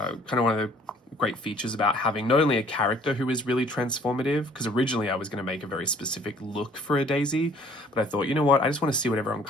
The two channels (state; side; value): normal; both; correlation 0.56